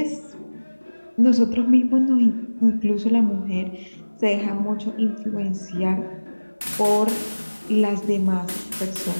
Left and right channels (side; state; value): both; inverted; correlation -1.00